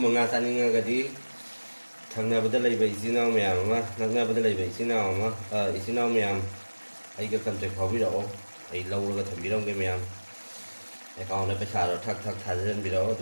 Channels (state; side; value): inverted; both; correlation -1.00